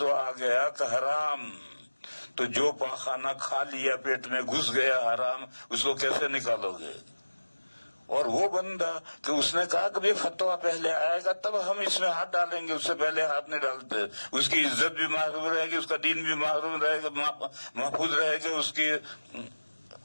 آ گیا کہ حرام، تو جو پاخانہ کھا لیا پیٹ میں گھس گیا حرام، اس کو کیسے نکالو گے؟ اور وہ بندہ کہ اس نے کہا کہ فتویٰ پہلے آئے گا تب ہم اس میں ہاتھ ڈالیں گے، اس سے پہلے ہاتھ نہیں ڈالتے، اس کی عزت بھی محفوظ رہے گی، اس کا دین بھی محفوظ رہے گا، اس کی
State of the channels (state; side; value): inverted; both; correlation -1.00